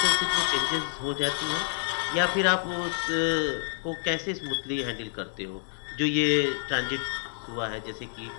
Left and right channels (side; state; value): right; silent; digital silence